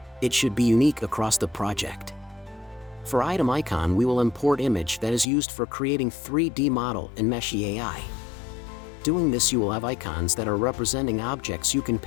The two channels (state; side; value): drops out; right; at 5.2 s